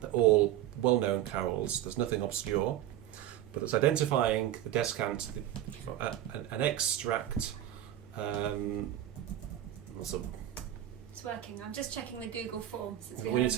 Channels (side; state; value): left; quieter; 12.3 dB